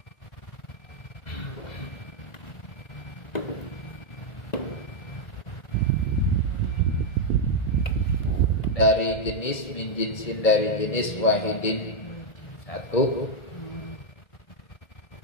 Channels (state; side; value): late; right; 2.1 ms